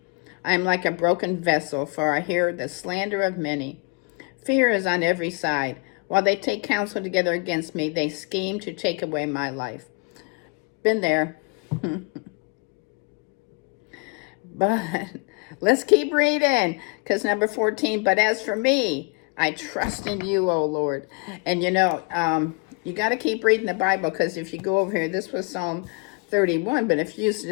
I am like a broken vessel, for I hear the slander of many. Fear is on every side. While they take counsel together against me, they scheme to take away my life. Been there. But let's keep reading, because number 14, but as for me, I trust in you, O Lord. And you got to keep reading the Bible, because if you go over here, this was Psalm 31, but if you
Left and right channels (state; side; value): quieter; right; 31.1 dB